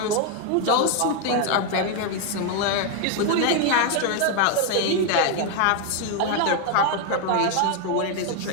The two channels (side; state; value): both; different; correlation 0.01